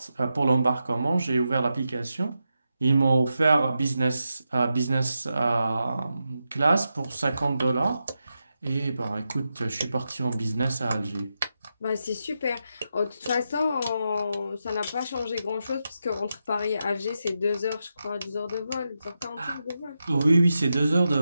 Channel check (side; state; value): both; inverted; correlation -0.87